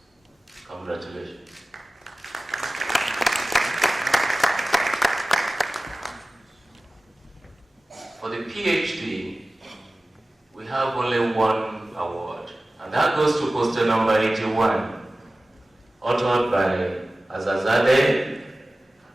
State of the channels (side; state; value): both; normal; correlation 0.97